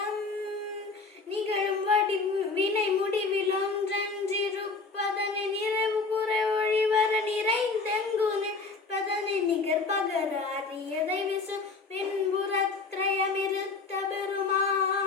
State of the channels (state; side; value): quieter; right; 4.1 dB